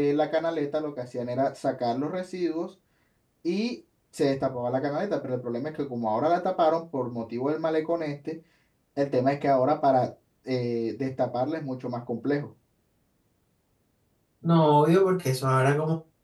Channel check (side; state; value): both; identical; correlation 1.00